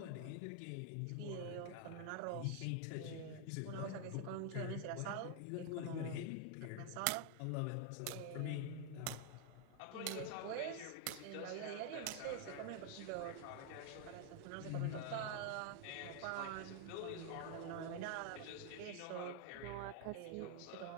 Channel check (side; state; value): both; different; correlation 0.00